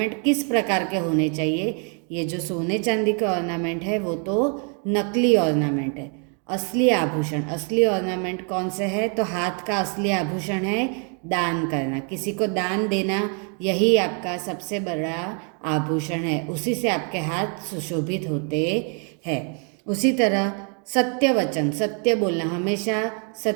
किस प्रकार के होने चाहिए? ये जो सोने चांदी के ऑर्नामेंट है वो तो नकली ऑर्नामेंट है. असली आभूषण, असली ऑर्नामेंट कौन से है? तो हाथ का असली आभूषण है दान करना, किसी को दान देना, यही आपका सबसे बड़ा आभूषण है. उसी से आपके हाथ सुशोभित होते हैं. उसी तरह सत्य वचन, सत्य बोलना, हमेशा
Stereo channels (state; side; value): quieter; left; 39.4 dB